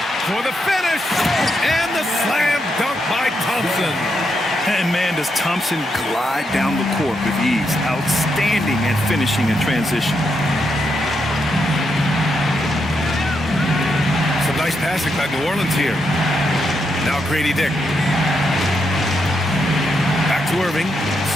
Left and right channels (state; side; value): normal; both; correlation 0.81